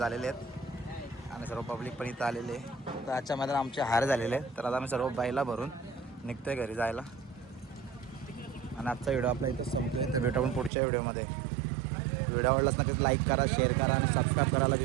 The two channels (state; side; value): drops out; left; at 10.7 s